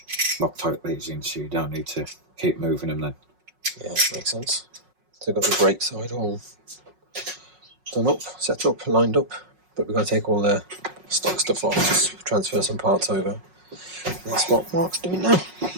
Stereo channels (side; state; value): left; late; 5.5 ms